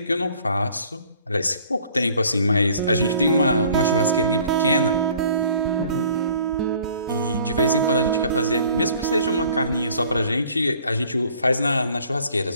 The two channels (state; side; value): inverted; both; correlation -0.54